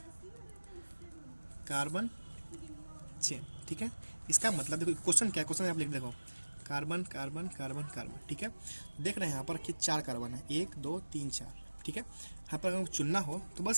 carbon chain, ठीक है। इसका मतलब देखो क्वेश्चन क्या है, क्वेश्चन आप लिख देखो, कार्बन कार्बन कार्बन कार्बन, ठीक है। देख रहे हैं यहाँ पर कि 4 कार्बन है, 1 2 3 4, ठीक है। यहाँ पर अगर चुनना हो तो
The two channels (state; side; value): inverted; both; correlation -1.00